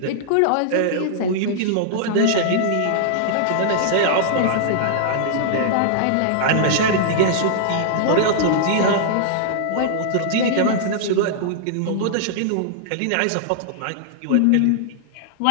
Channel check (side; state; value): both; different; correlation -0.01